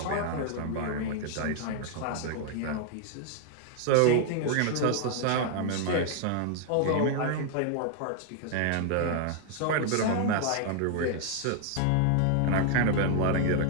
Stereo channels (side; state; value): both; different; correlation 0.00